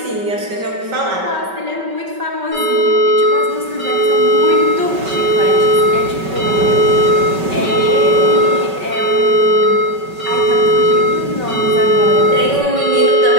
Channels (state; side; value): late; left; 5.2 ms